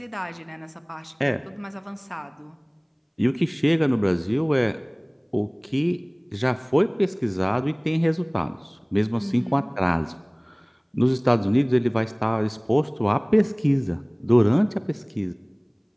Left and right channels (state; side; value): identical; both; correlation 1.00